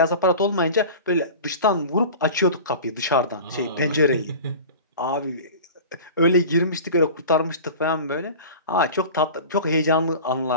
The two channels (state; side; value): inverted; both; correlation -0.36